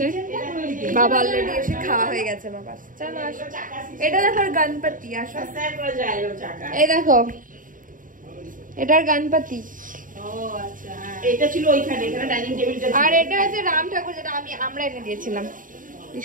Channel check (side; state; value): left; late; 0.39 ms